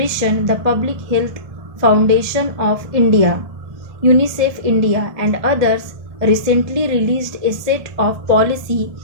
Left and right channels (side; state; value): left; late; 1.7 ms